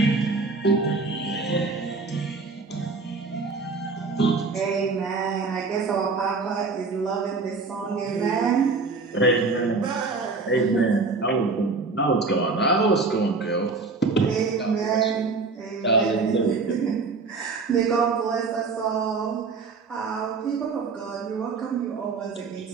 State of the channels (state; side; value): quieter; left; 4.2 dB